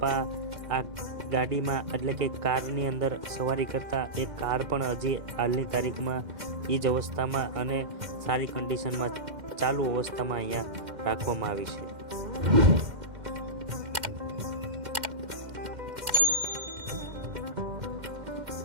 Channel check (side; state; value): left; late; 2.1 ms